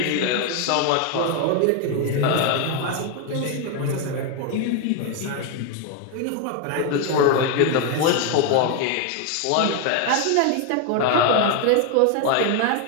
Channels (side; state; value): both; different; correlation 0.01